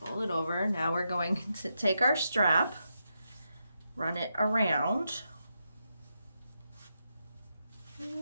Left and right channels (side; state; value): both; inverted; correlation -0.84